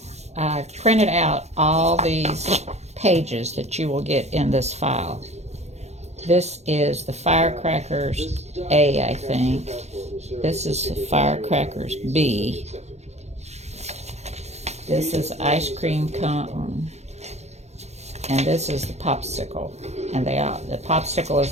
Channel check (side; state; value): left; late; 0.32 ms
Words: I've printed out all these pages that you will get in this file. This is the Firecrackers A, I think. This is the Firecrackers B. This is ice cream cone. And this is the popsicle. And the popsicle is